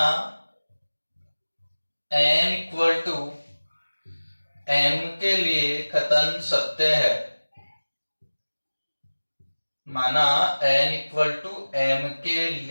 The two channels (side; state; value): both; inverted; correlation -1.00